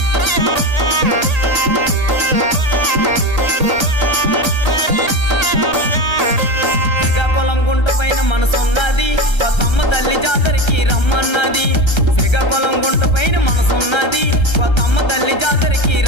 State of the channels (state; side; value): late; right; 1.3 ms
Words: శ్రీకాకుళం గుంట పైన మనసున్నది, కొత్తమ్మ తల్లి జాతరకి రమ్మన్నది. శ్రీకాకుళం గుంట పైన మనసున్నది, కొత్తమ్మ తల్లి జాతరకి